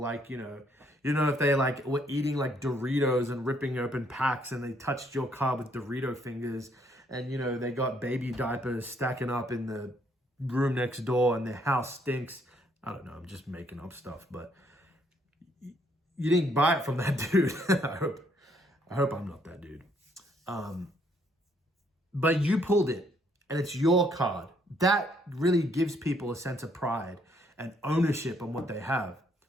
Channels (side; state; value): both; normal; correlation 0.68